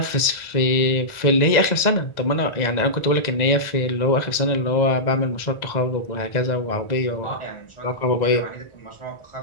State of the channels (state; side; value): late; right; 1.9 ms